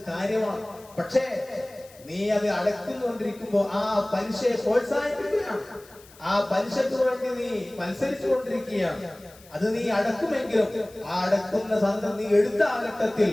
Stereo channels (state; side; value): noise; left; hiss, 24 dB below the sound